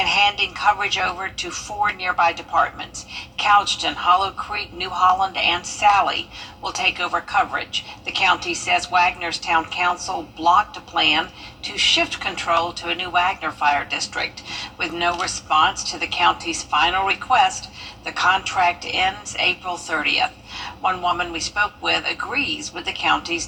handing coverage over to 4 nearby departments. Couchton, Hollow Creek, New Holland, and Sally will take over coverage. The county says Wagner's town council blocked a plan to shift control to a new Wagner Fire District. With no response to the county's final request, the contract ends April 30th. One woman we spoke with agrees with the county's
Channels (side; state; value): both; identical; correlation 1.00